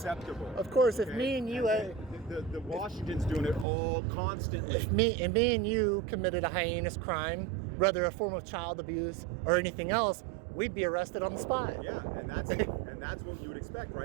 Of course, if Okay? me and you, the Washington's doing it all constantly. if me and you committed a heinous crime, whether a form of child abuse or anything else, we'd be arrested on the spot. Yeah, and that's what you would expect,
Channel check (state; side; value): drops out; left; at 3.7 s